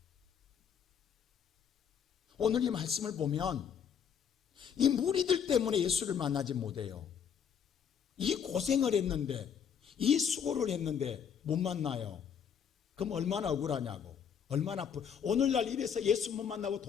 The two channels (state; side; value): quieter; right; 7.7 dB